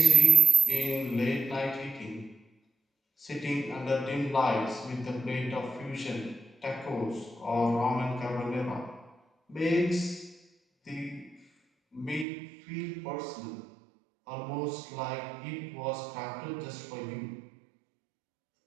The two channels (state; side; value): drops out; left; at 12.2 s